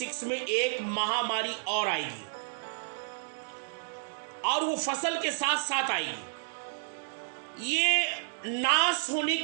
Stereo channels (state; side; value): silent; left; digital silence